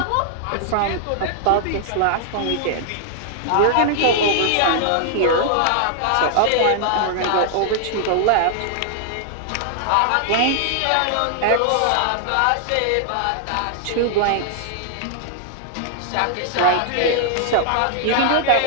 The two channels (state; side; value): different; both; correlation -0.01